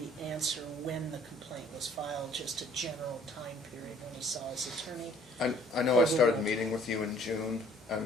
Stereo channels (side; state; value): both; normal; correlation 0.56